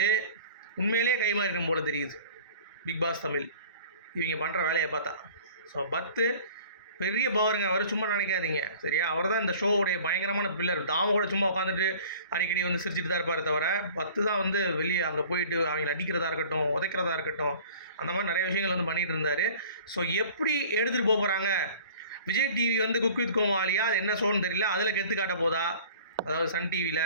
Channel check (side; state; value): both; inverted; correlation -0.47